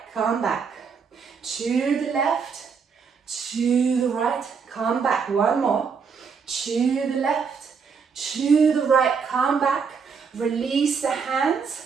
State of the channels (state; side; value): quieter; left; 5.9 dB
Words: come back. To the left, to the right, come back. One more. To the left, to the right, come back. Release the hands,